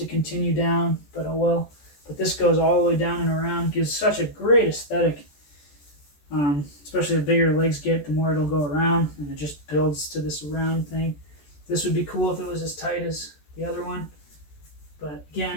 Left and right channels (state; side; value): late; right; 14 ms